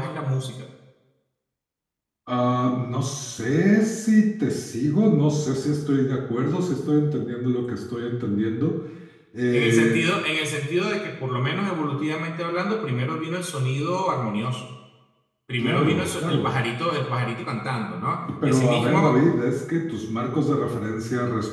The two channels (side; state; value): both; identical; correlation 1.00